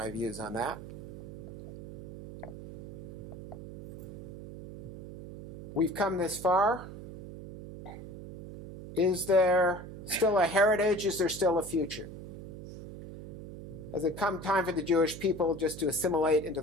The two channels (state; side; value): noise; right; hum, 11 dB below the sound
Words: views on that. We've come this far. Is there still a heritage? Is there still a future? Has it come time for the Jewish people just to assimilate into